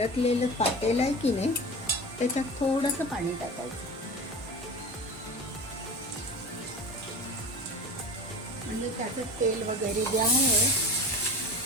पातेलं आहे की नाही, त्याच्यात थोडंसं पाणी टाकायचं. म्हणजे त्याचं तेल वगैरे जे आहे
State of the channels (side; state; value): both; normal; correlation 0.33